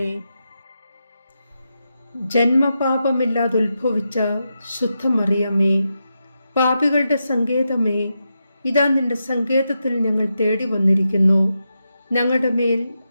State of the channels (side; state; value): both; inverted; correlation -0.87